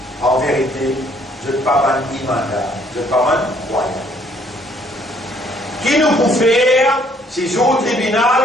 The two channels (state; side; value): normal; both; correlation 0.64